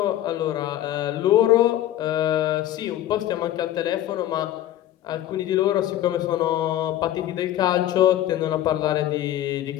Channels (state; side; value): quieter; right; 12.9 dB